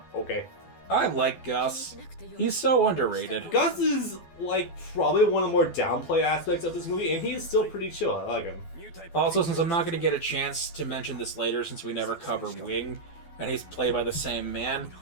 okay. I like Gus. He's so underrated. Gus is, like, probably one of the more downplay aspects of this movie, and he is still pretty chill. I like him. Also, since I'm not going to get a chance to mention this later since we never cover Wing, and he's played by the same man,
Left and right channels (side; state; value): right; late; 12 ms